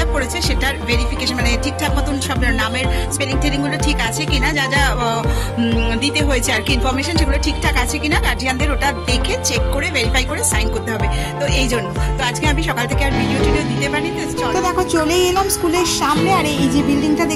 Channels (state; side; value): identical; both; correlation 1.00